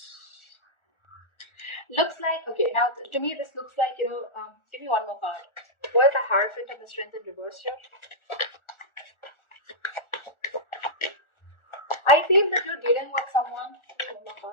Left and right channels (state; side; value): late; right; 1.4 ms